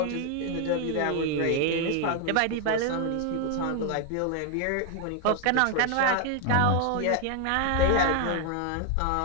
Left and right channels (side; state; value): both; different; correlation 0.01